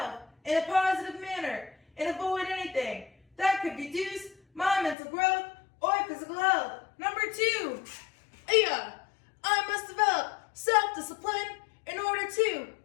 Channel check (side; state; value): right; drops out; at 5.0 s